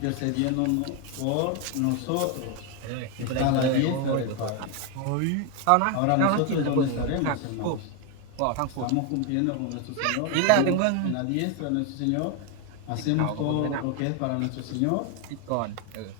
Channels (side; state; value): both; different; correlation 0.02